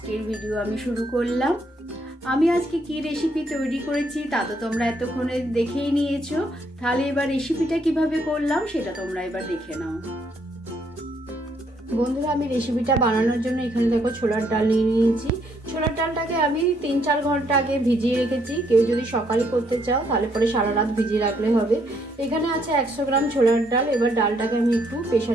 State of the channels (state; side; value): normal; both; correlation 0.71